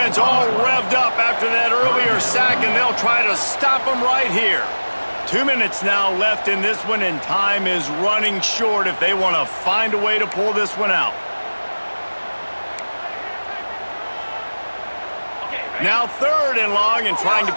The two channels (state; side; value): inverted; both; correlation -1.00